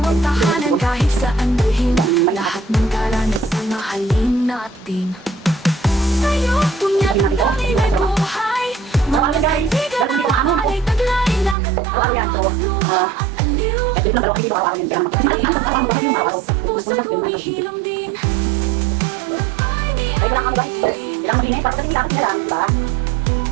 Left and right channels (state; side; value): drops out; left; at 11.6 s